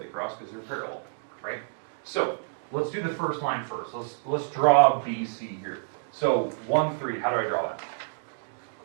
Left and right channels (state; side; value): silent; left; digital silence